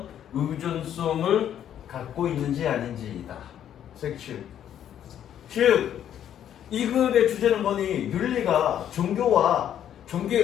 의존성을 갖고 있는지 아닌지이다. 섹슈. 즉, 이 글의 주제는 뭐니? 윤리가 종교에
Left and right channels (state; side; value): quieter; right; 10.2 dB